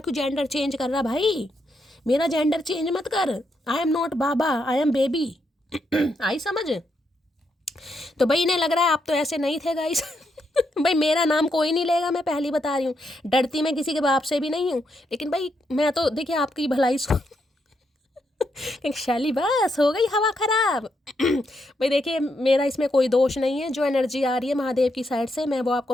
जेंडर चेंज कर रहा भाई, मेरा जेंडर चेंज मत कर। आई एम नॉट बाबा, आई एम बेबी। आई समझ। तो भाई इन्हें लग रहा है आप तो ऐसे नहीं थे गाइस। भाई मेरा नाम कोई नहीं लेगा, मैं पहली बता रही हूँ। डरती मैं किसी के बाप से भी नहीं हूँ, लेकिन भाई मैं तो देखिए आपकी भलाई शैली बस हो गई हवा खराब। भाई देखिए मेरा इसमें कोई दोष नहीं है। जो एनर्जी आ रही है महादेव की साइड से, मैं वो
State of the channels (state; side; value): normal; both; correlation 0.79